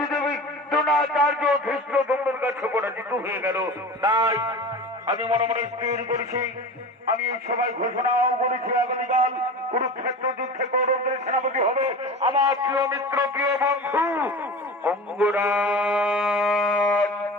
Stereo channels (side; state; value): both; normal; correlation 0.33